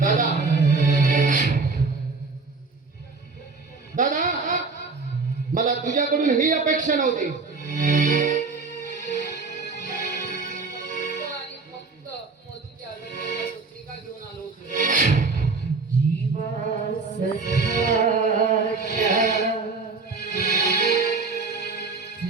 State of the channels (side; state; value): left; quieter; 4.2 dB